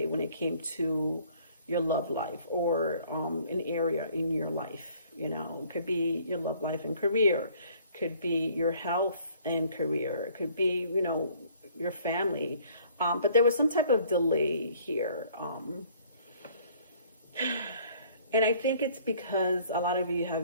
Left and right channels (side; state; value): both; inverted; correlation -0.57